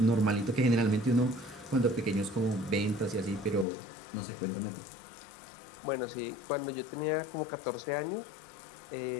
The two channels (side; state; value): right; drops out; at 3.7 s